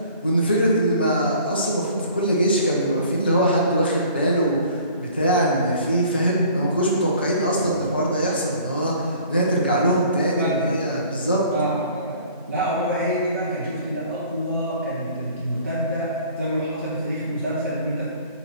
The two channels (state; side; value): inverted; both; correlation -0.50